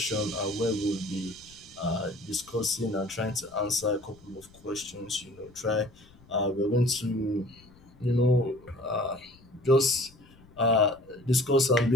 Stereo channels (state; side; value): noise; left; rumble, 26 dB below the sound